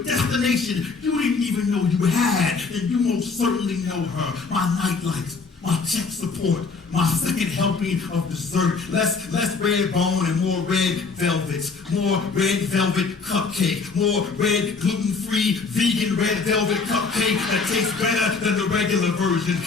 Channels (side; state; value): right; quieter; 4.6 dB